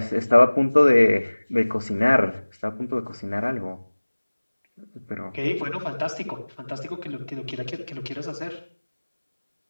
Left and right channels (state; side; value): inverted; both; correlation -1.00